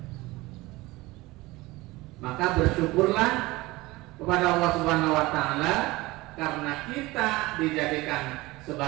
Maka bersyukurlah kepada Allah Subhanahu wa ta'ala karena kita dijadikan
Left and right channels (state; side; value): quieter; left; 20.6 dB